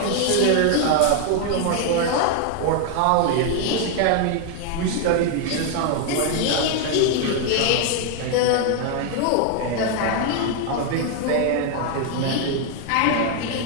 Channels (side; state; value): both; different; correlation 0.00